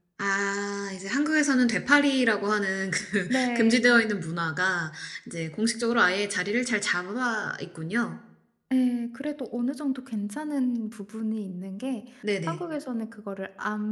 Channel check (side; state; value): both; identical; correlation 1.00